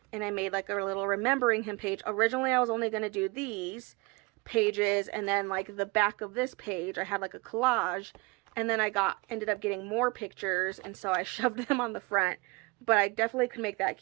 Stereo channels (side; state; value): left; quieter; 26.9 dB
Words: And I made like a little remembering him page. Originally, I was only going to do these pages. And then like the back of this page, I had like a collage. And then I ended up getting more pictures. And so I shoved them on the front. But I definitely could make that